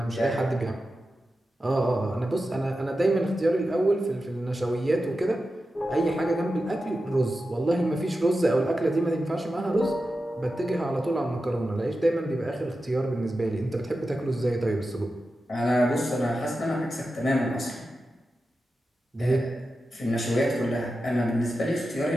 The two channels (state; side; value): normal; both; correlation 0.91